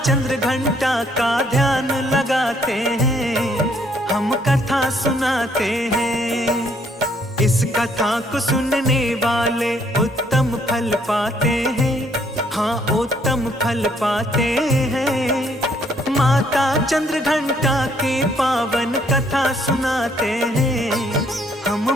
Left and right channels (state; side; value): normal; both; correlation 0.67